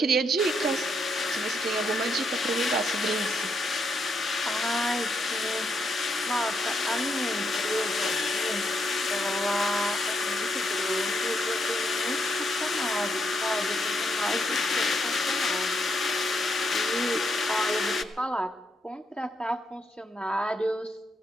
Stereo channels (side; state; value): both; normal; correlation 0.78